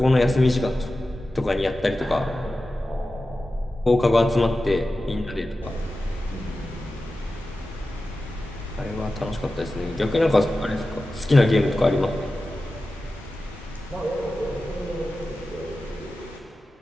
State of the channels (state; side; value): normal; both; correlation 0.94